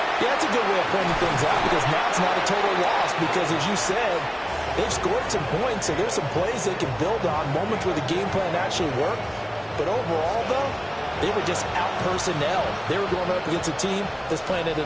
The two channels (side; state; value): both; identical; correlation 1.00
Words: Yeah, that's a good way of pointing things out because now it's not a total loss because, as you said, they've scored some points, so there's some plays they can build on, moments where the game plan actually worked. But overall, though, they were just out-personnel. They were going up against a team that's playing at